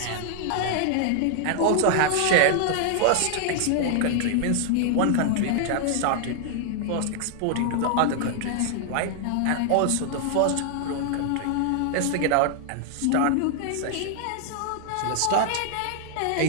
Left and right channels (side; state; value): both; different; correlation 0.00